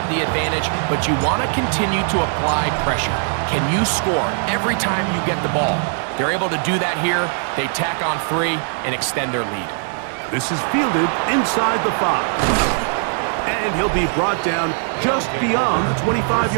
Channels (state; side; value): silent; left; 58 dB below the other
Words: the advantage, but you want to continue to apply pressure. Can you score every time you get the ball? They're able to do that here. They tack on 3 and extend their lead. This is fielded inside the 5. And he'll be brought down just beyond the